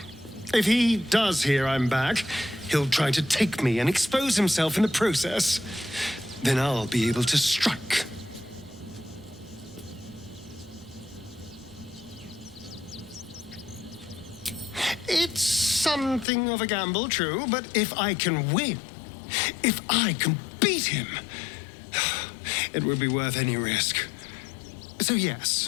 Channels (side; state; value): right; drops out; at 16.2 s